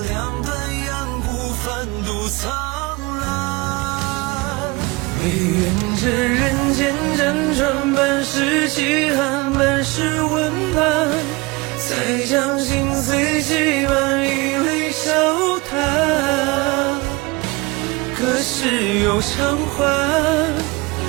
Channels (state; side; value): quieter; left; 24.8 dB